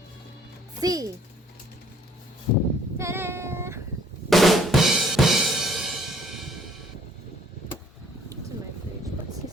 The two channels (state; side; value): normal; both; correlation 0.59